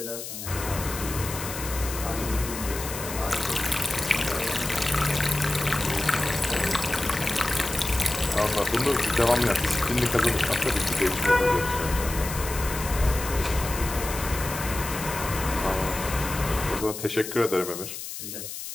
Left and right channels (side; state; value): left; noise; hiss, 8 dB below the sound